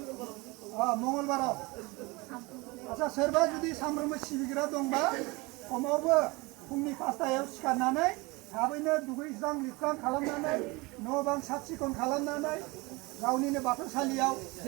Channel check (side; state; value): left; quieter; 24.6 dB